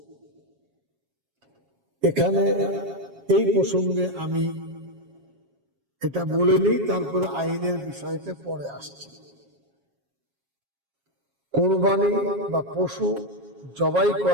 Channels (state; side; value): late; left; 7.3 ms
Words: এখানে এই প্রসঙ্গে আমি এটা বলে নিই, তারপরে আইনের বিষয়তে পরে আসছি। কোরবানি বা পশু জবাই